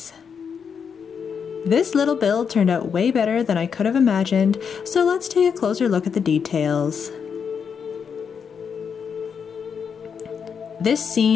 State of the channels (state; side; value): quieter; right; 6.7 dB